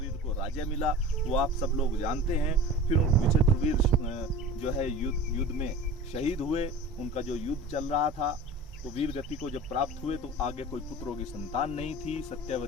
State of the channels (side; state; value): both; normal; correlation 0.36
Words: को राज्य मिला, वो आप सब लोग जानते हैं। फिर विचित्रवीर जो है युद्ध में शहीद हुए। उनका जो युद्ध चल रहा था तो वीर गति को जब प्राप्त हुए तो आगे कोई पुत्रों की संतान नहीं थी।